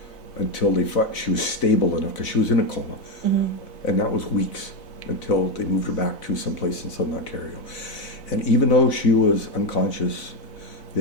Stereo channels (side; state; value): right; late; 4.0 ms